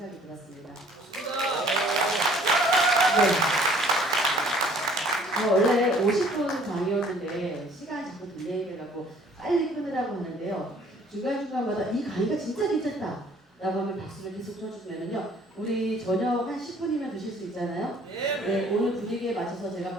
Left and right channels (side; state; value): both; normal; correlation 0.56